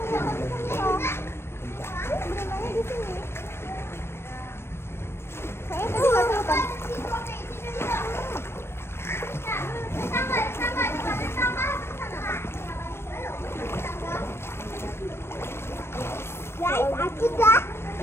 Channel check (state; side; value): late; right; 0.12 ms